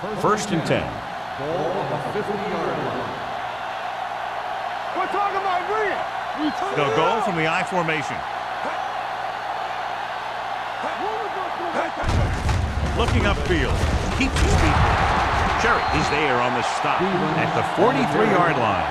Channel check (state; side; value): identical; both; correlation 1.00